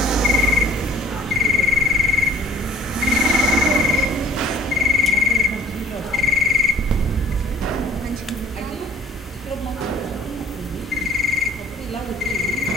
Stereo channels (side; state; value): both; normal; correlation 0.54